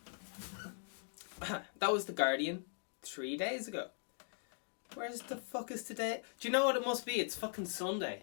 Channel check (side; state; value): right; silent; 51 dB below the other